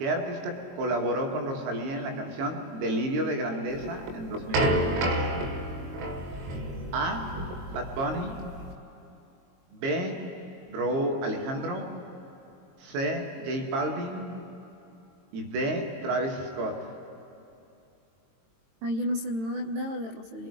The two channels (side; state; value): left; late; 22 ms